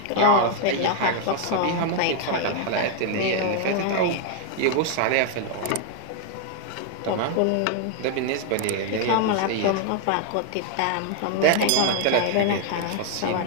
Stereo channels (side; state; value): both; different; correlation 0.00